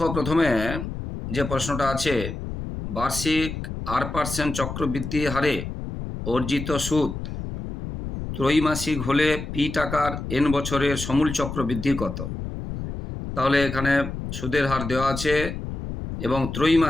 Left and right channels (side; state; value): left; noise; rumble, 7 dB below the sound